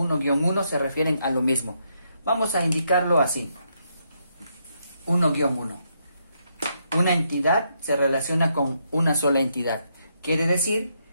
se refieren a lo mismo. Vamos a indicarlo así. 1-1. Una entidad se relaciona con una sola entidad. Quiere decir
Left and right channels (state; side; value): inverted; both; correlation -0.78